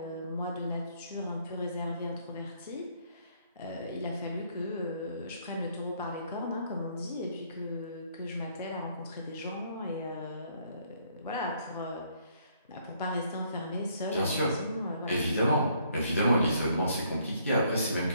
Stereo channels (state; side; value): inverted; both; correlation -0.67